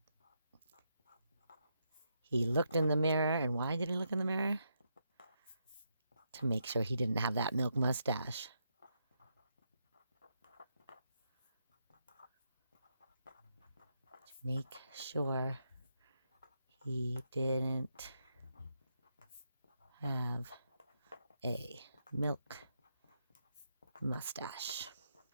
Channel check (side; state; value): both; inverted; correlation -0.81